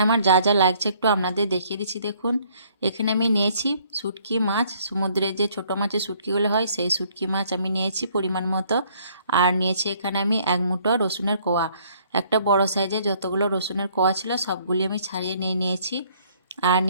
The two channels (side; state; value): both; inverted; correlation -0.62